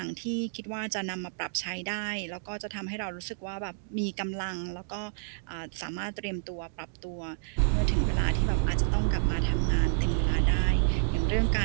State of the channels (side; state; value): left; silent; digital silence